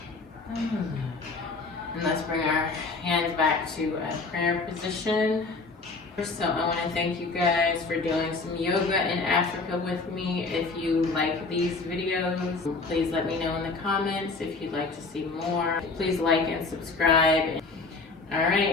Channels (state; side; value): quieter; right; 3.9 dB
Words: And let's bring our hands back to a prayer position. So I want to thank you guys for doing some yoga in Africa with me. If you like these videos, please let me know in the comments. If you'd like to see more, please like and subscribe. All